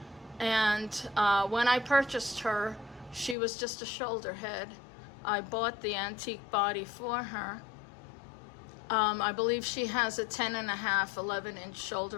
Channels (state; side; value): drops out; right; at 3.4 s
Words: And when I purchased her, she was just a shoulder head. I bought the antique body for her. I believe she has a 10.5, 11-inch